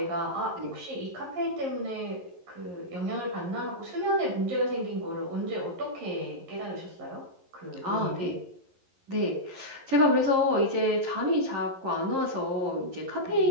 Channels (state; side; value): late; left; 11 ms